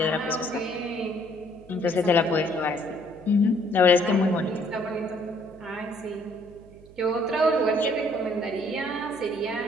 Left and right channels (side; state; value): right; noise; hum, 23 dB below the sound